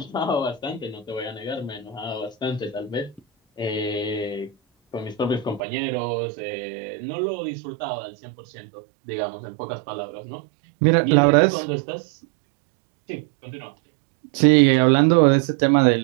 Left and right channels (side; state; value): left; drops out; at 5.6 s